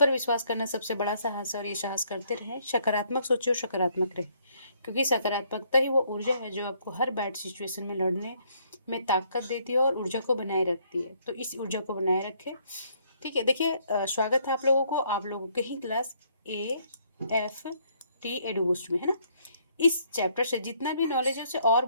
विश्वास करना सबसे बड़ा साहस है और ये साहस करते रहें। सकारात्मक सोचिए और सकारात्मक रहें, क्योंकि सकारात्मकता ही वो ऊर्जा है जो आपको हर बैड सिचुएशन में लड़ने में ताकत देती है और ऊर्जा को बनाए रखती है। तो इस ऊर्जा को बनाए रखें। ठीक है, देखिए स्वागत है आप लोगों को, आप लोगों के ही क्लास AFT एडू बूस्ट में, है ना। इस चैप्टर से जितना भी नॉलेज है उसे और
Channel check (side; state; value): both; inverted; correlation -0.68